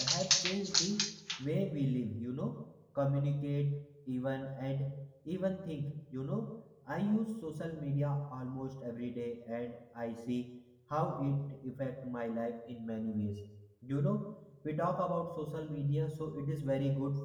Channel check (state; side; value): identical; both; correlation 1.00